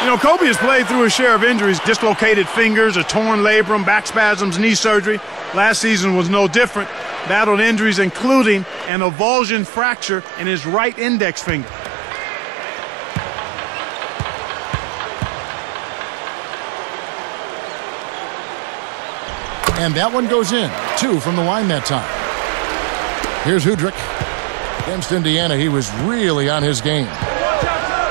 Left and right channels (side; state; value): left; drops out; at 8.9 s